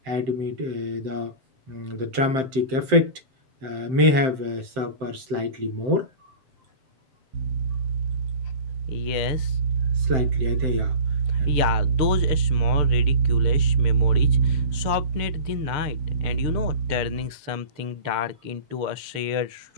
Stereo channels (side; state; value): left; late; 7.7 ms